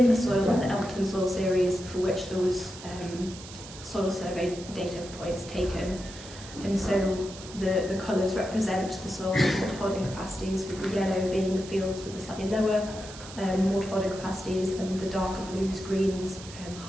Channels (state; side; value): noise; right; hiss, 15 dB below the sound